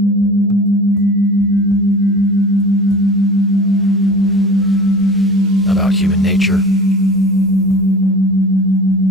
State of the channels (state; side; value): normal; both; correlation 0.37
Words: About human nature,